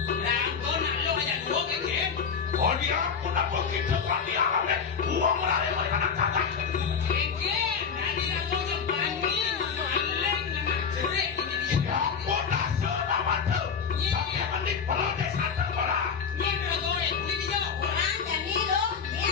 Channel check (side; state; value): right; quieter; 6.3 dB